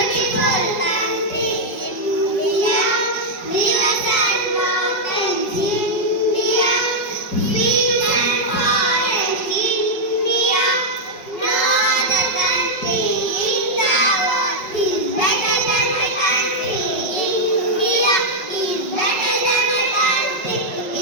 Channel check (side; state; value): right; late; 5.3 ms